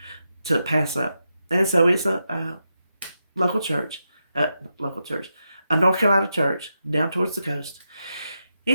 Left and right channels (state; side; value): inverted; both; correlation -0.86